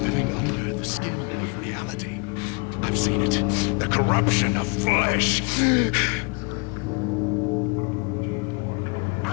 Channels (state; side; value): quieter; right; 32.4 dB